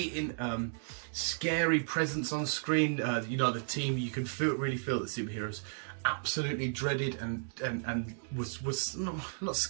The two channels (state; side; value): silent; left; digital silence